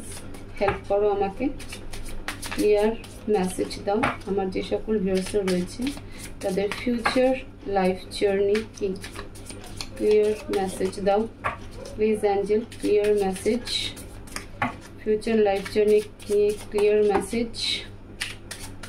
হেল্প করো আমাকে, ক্লিয়ার মেসেজ দাও। আমার যে সকল ভিউয়ার্সরা রয়েছে তাদের ফিউচার লাইফ জার্নি কি, ক্লিয়ার মেসেজ দাও please Angel, clear message, future life journey ki clear message।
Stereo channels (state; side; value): identical; both; correlation 1.00